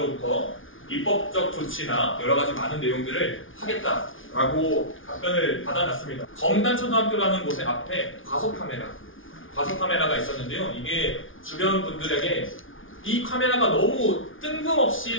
입법적 조치나 여러 가지 많은 내용들을 하겠다라고 답변을 받아놨습니다. 검단초등학교라는 곳의 앞에 과속 카메라가 있었는데요. 이게 주변 분들에게 이 카메라가 너무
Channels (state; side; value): late; right; 0.57 ms